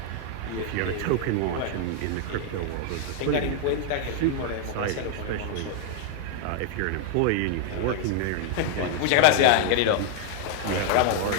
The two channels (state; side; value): different; both; correlation 0.00